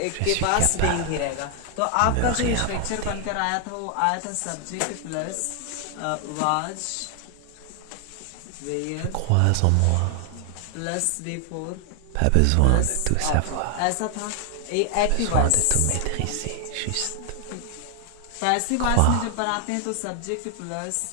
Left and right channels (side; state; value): both; different; correlation 0.00